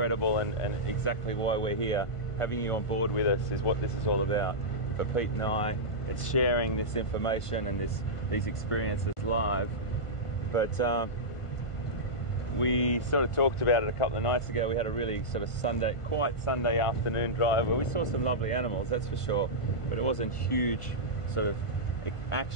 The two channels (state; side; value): late; right; 1.5 ms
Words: and exactly why we're here. Having you on board with us is what this is all about. For Pete and I, it's sharing this information and these experiences live. But we sort of talked about it a couple of nights ago. We had a really sort of quiet Sunday afternoon drive where we saw some lovely animals, that's for sure, but it wasn't huge sort of